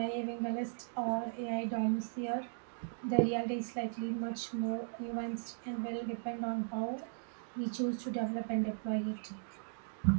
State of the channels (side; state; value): left; silent; digital silence